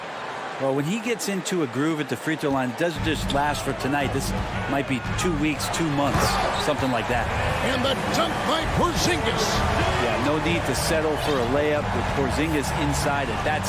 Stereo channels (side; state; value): both; identical; correlation 1.00